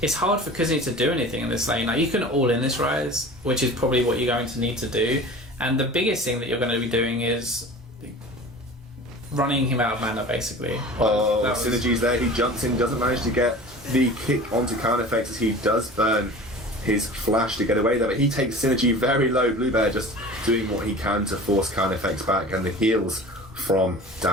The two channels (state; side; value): normal; both; correlation 0.39